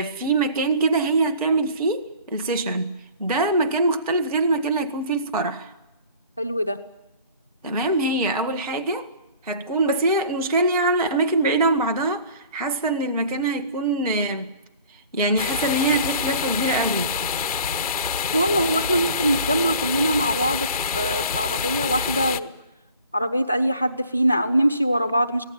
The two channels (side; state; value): both; inverted; correlation -0.49